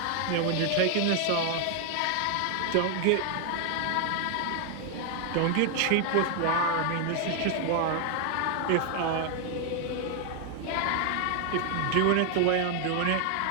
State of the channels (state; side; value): different; both; correlation 0.00